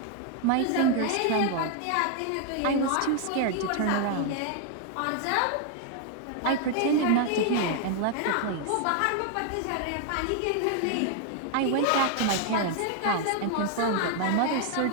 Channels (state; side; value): different; both; correlation 0.00